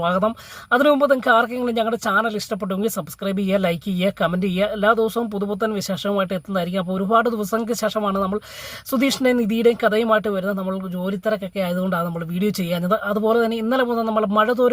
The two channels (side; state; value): both; identical; correlation 1.00